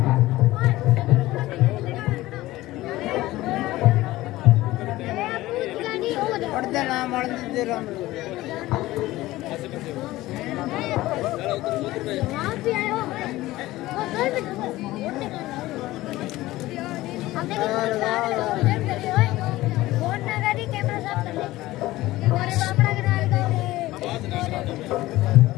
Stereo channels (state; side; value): quieter; right; 17.4 dB